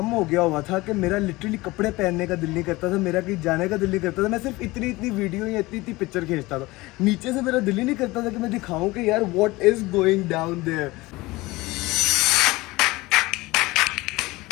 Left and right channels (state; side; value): quieter; right; 20.8 dB